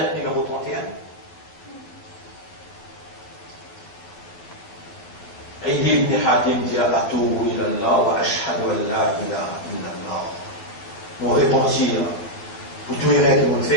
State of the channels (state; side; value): late; right; 11 ms